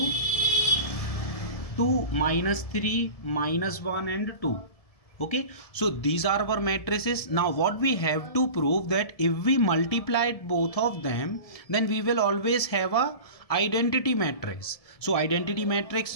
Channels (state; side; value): late; right; 1.7 ms